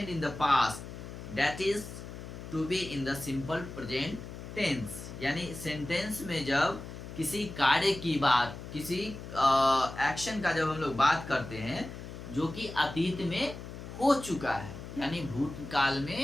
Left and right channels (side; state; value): left; noise; hum, 11 dB below the sound